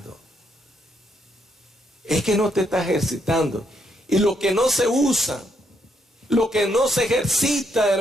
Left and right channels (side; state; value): both; normal; correlation 0.75